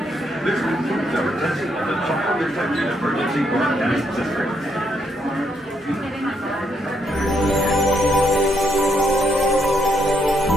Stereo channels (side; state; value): both; normal; correlation 0.75